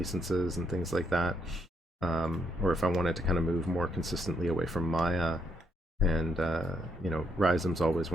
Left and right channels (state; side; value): normal; both; correlation 0.75